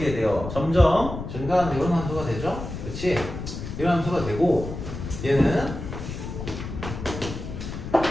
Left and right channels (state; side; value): noise; left; rumble, 8 dB below the sound